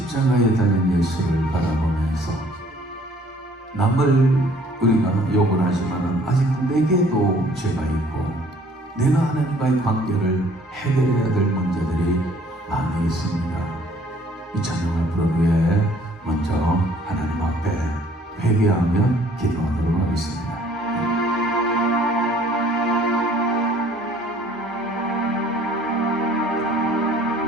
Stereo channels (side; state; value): both; normal; correlation 0.57